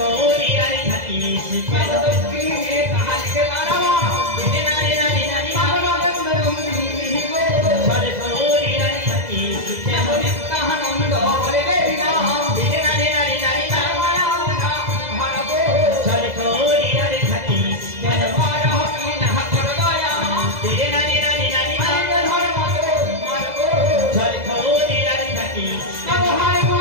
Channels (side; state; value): left; late; 2.0 ms